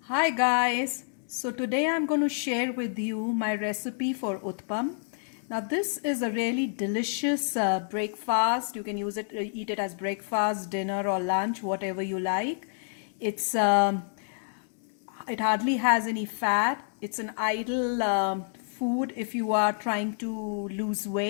Hi guys, so today I'm going to share with you my recipe for Uttapam. Now this is a really delicious breakfast. You can eat it as breakfast, dinner or lunch, whatever you like. It hardly has any fat. It's an ideal food if you are trying to lose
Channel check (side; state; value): right; silent; 59 dB below the other